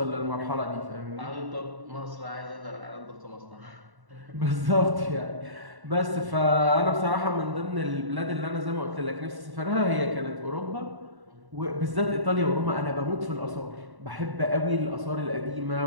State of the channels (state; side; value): late; left; 1.1 ms